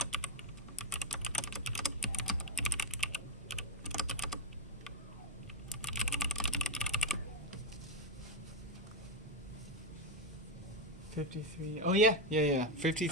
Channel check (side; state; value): both; normal; correlation 0.09